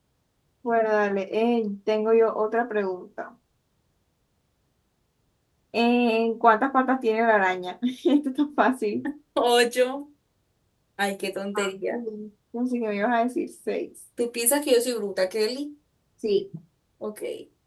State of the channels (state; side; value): identical; both; correlation 1.00